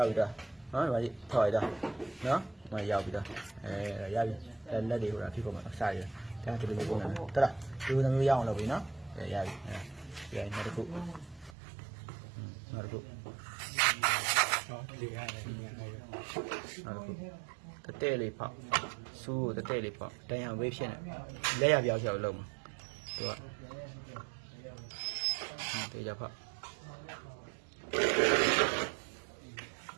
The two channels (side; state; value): left; drops out; at 11.6 s